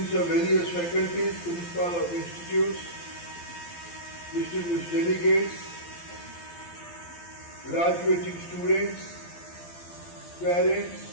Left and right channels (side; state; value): right; late; 12 ms